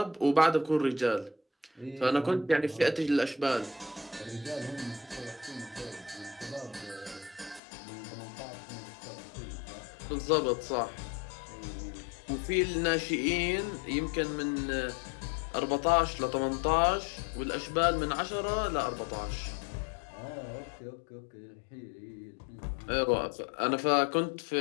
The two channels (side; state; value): right; drops out; at 7.6 s